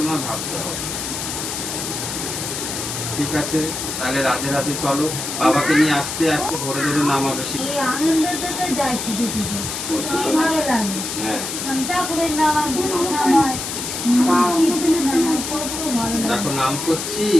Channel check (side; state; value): left; noise; hiss, 5 dB below the sound